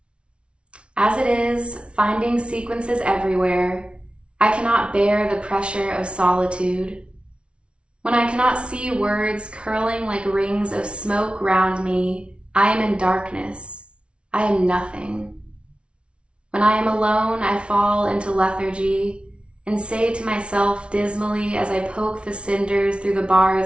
As it is, finding sequences everywhere, I cannot bear the pressure of solitude. When I cannot see words curling like rings of smoke round me, I am in darkness. I am nothing. When I am alone, I fall into lethargy and say to myself dismally as I poke the cinders through the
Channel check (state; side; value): late; left; 0.059 ms